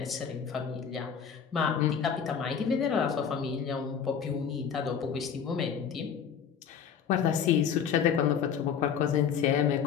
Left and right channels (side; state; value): right; quieter; 7.5 dB